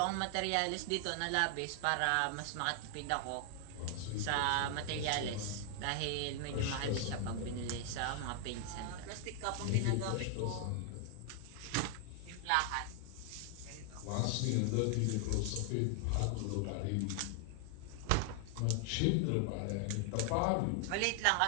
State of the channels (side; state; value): both; different; correlation 0.00